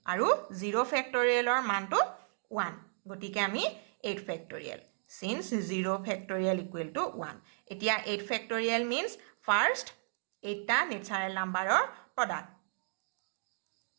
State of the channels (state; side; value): silent; left; digital silence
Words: আৰু 0 ফেক্টৰিয়েলৰ মানটো 1 গতিকে আমি 8 factorial since 0 factorial equal to 1 এতিয়া 8 ফেক্টৰিয়েল মিন্স ফাৰ্ষ্ট 8টা নেচাৰেল নাম্বাৰৰ প্ৰডাক্ট